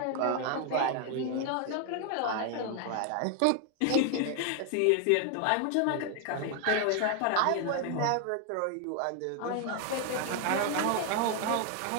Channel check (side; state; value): both; different; correlation 0.00